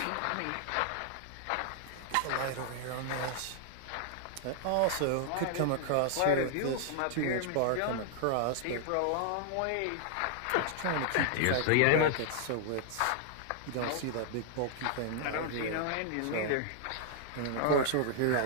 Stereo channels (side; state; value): both; different; correlation 0.00